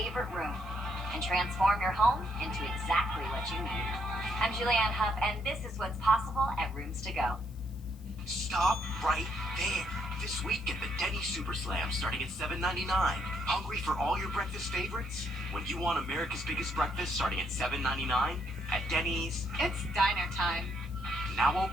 room. And transform your home into exactly what you need. I'm Julianne Huff, and this is what's possible at Rooms to Go. Stop right there. This week, get the Denny's Super Slam starting at $7.99. Hungry for all your breakfast favorites? When you want America's biggest breakfast starting at $7.99 at Denny's, it's diner time. Now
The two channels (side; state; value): left; noise; hiss, 27 dB below the sound